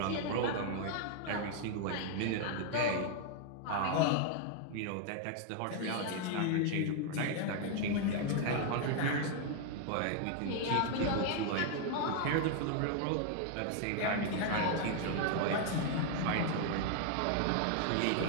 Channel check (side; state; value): both; different; correlation 0.00